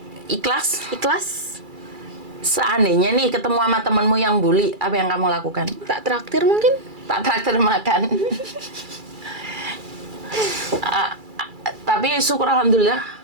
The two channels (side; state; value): left; late; 2.3 ms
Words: ikhlas. Seandainya nih ketemu sama temenmu yang bully, apa yang kamu lakukan? Tak traktir mungkin? Tak traktir makan. Tapi syukur alhamdulillah.